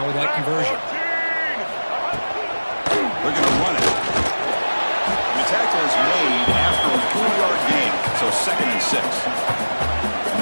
with that conversion. We're going to run it. The tackle is made after a 4-yard gain, so 2nd and 6.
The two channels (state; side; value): inverted; both; correlation -1.00